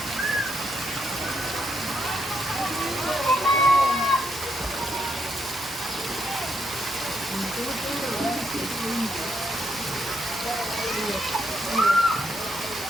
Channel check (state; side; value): noise; left; hum, 24 dB below the sound